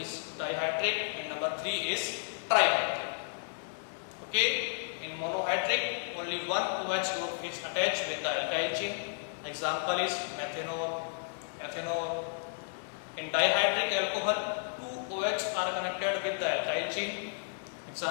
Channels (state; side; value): silent; right; 56 dB below the other